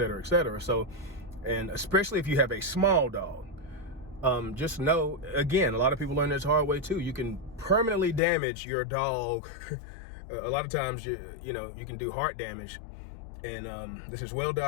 So, and especially if you have a small dog, just know, again, a lot of people learn this the hard way too. You can permanently damage your dog. A lot of times, you know, you can do heart damage. And this is well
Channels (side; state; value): right; drops out; at 8.2 s